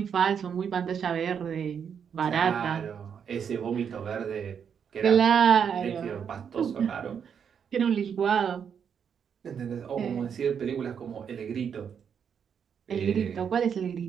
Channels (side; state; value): left; quieter; 7.4 dB